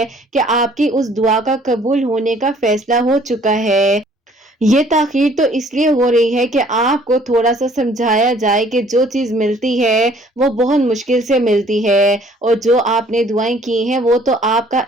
کہ آپ کی اس دعا کا قبول ہونے کا فیصلہ ہو چکا ہے۔ یہ تاخیر تو اس لیے ہو رہی ہے کہ آپ کو تھوڑا سا سمجھایا جائے کہ جو چیز ملتی ہے وہ بہت مشکل سے ملتی ہے، اور جو آپ نے دعائیں کی ہیں وہ تو آپ کا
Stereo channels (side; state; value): both; normal; correlation 0.58